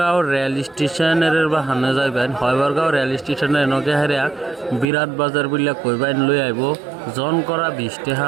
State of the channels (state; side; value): drops out; left; at 4.9 s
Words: রেল স্টেশনের বাহানে যাইবেন। হয়বরগাঁও রেল স্টেশনের নগে হেরিয়া বিরাট বাজার বলে কইবেন লই আইব। জন করা 20 টাকা